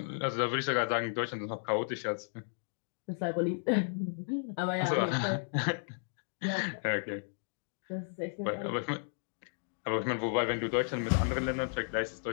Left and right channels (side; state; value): right; silent; digital silence